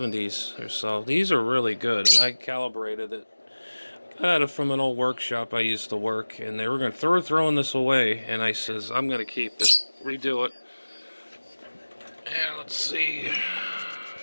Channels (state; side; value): inverted; both; correlation -1.00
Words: or so. These are really good, and I calibrated it. Got it from an old workshop I used to work, and they were going to throwing this away, and I says, I'm going to keep it, redo it. And let's see.